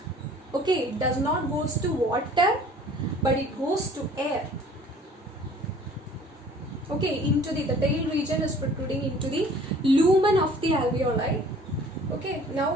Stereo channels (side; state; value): both; normal; correlation 0.52